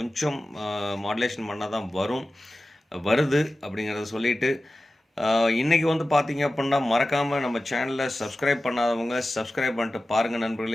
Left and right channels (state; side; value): normal; both; correlation 0.95